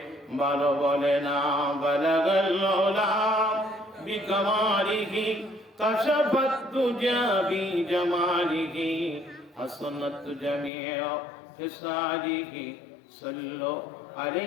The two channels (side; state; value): right; drops out; at 10.7 s